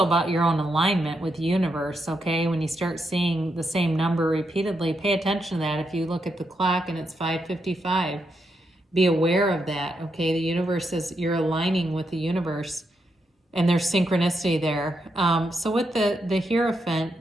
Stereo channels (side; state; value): both; normal; correlation 0.82